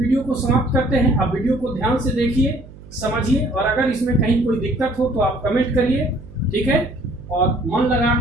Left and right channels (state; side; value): noise; right; hum, 19 dB below the sound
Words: को समाप्त करते हैं। आप वीडियो को ध्यान से देखिए, समझिए, और अगर इसमें कहीं कोई दिक्कत हो तो आप कमेंट करिए, ठीक है, और मन लगा